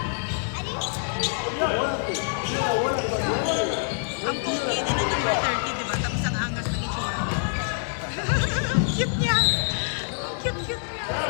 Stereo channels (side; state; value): right; silent; digital silence